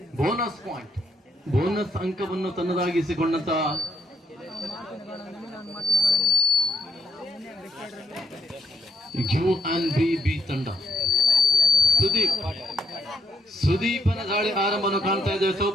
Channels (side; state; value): both; normal; correlation 0.75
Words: ಬೋನಸ್ ಪಾಯಿಂಟ್, ಬೋನಸ್ ಅಂಕವನ್ನು ತನ್ನದಾಗಿಸಿಕೊಂಡಂತ UNB ತಂಡ. ಸುದೀಪನ ದಾಳಿ ಆರಂಭವನ್ನು ಕಾಣ್ತಾ ಇದ್ದೇವೆ